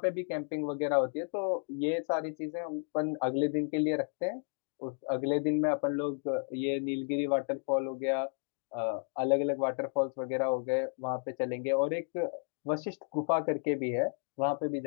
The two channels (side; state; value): right; silent; 56 dB below the other